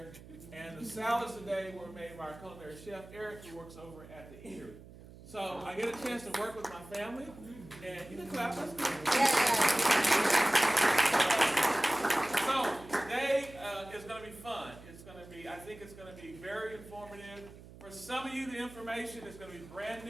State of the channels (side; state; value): right; noise; hum, 18 dB below the sound